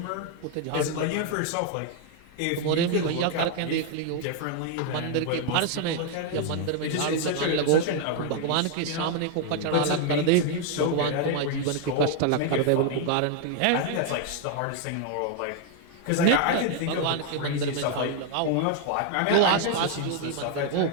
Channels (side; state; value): both; different; correlation 0.00